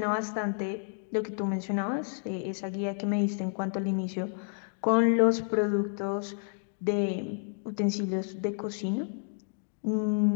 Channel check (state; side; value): silent; right; digital silence